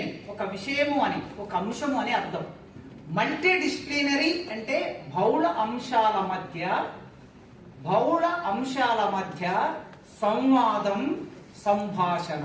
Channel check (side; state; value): both; identical; correlation 1.00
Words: ఒక విషయము అని, ఒక అంశము అని అర్థం. మల్టీ డిసిప్లినరీ అంటే బహుళ అంశాల మధ్య సంవాదం,